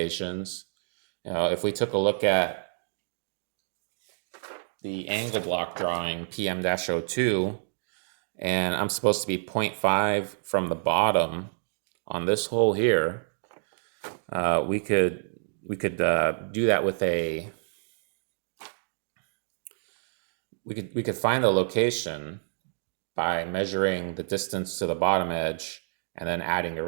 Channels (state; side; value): silent; left; digital silence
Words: You know, if we took a look at the angle block drawing PM-02, and I'm supposed to be 0.5 from the bottom on this hole here, we could do that with a, we could find the location by measuring the distance to the bottom edge and then adding the